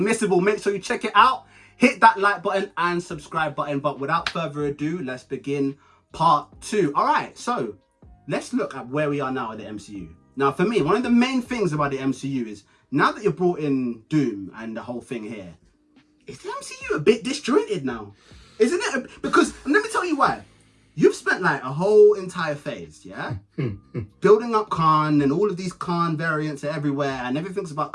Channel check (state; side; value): identical; both; correlation 1.00